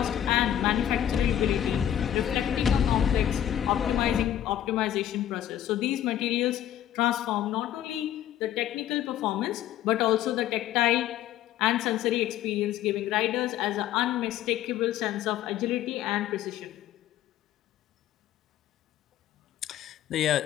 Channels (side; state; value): right; quieter; 11.4 dB